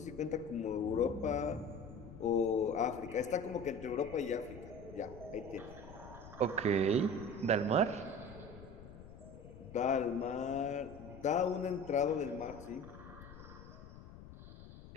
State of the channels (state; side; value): noise; left; rumble, 16 dB below the sound